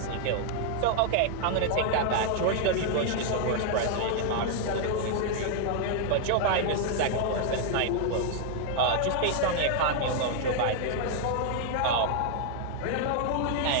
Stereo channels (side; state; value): both; different; correlation 0.00